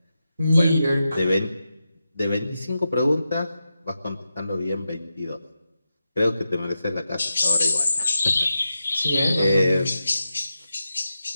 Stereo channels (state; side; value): inverted; both; correlation -0.89